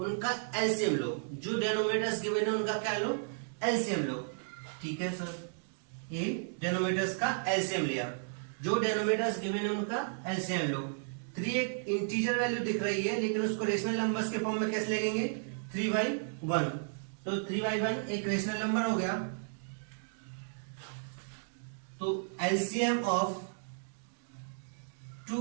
एलसीएम लो. जो डिनोमिनेटर्स गिवन है उनका क्या लो? एलसीएम लो. ठीक है सर, ये डिनोमिनेटर्स का एलसीएम लिया. जो डिनोमिनेटर्स गिवन है उनका एलसीएम लो. 3 एक इंटीजर वैल्यू दिख रही है, लेकिन उसको रेशनल नंबर्स के फॉर्म में कैसे लिखेंगे? 3/1. तो 3/1 एक रेशनल नंबर हो गया. तो एलसीएम ऑफ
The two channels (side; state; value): left; silent; digital silence